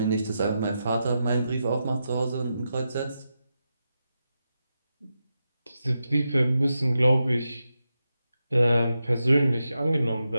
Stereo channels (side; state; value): both; inverted; correlation -0.88